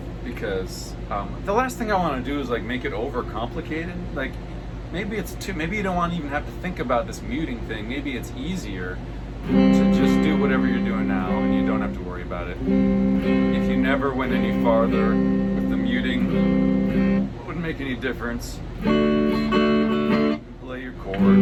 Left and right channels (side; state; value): both; identical; correlation 1.00